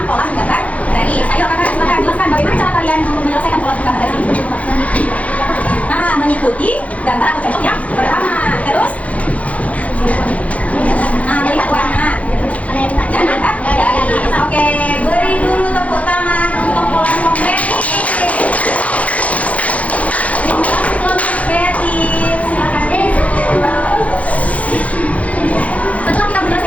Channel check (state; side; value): late; right; 0.067 ms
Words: pola menggambar garis. Ayo, kakak, silakan jelaskan bagaimana cara kalian menyelesaikan pola menggambar garis ini. Nah, mengikuti gambar atau contoh yang pertama. Terus, nah, melihat warna dan angkat garis. Oke, beri dulu tepuk tangan untuk pola konkret. Kelompok kreatif, silakan. Setelah kita